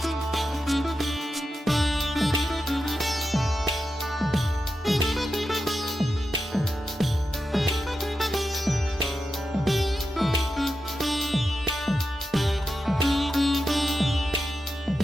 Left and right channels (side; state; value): both; normal; correlation 0.89